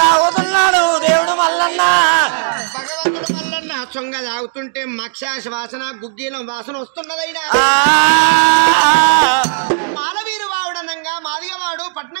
తాగుతున్నాడు దేవుడు మల్లన్న భగవంతుడు మల్లన్న సొంగ తాగుతుంటే మక్షాశ వాసన గుగ్గీలం వాసన వస్తున్నదైనా మాలవీరు వావుడనంగా మాదిగవాడు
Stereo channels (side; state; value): left; silent; digital silence